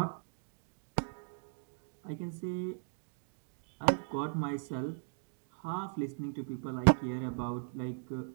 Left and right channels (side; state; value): left; silent; digital silence